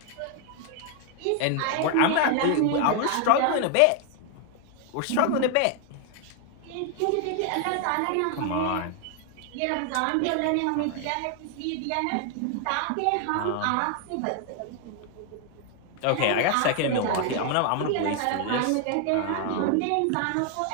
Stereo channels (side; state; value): both; different; correlation 0.00